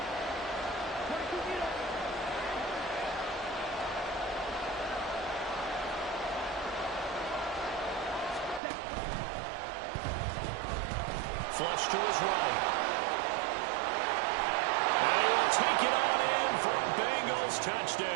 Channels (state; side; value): drops out; left; at 8.6 s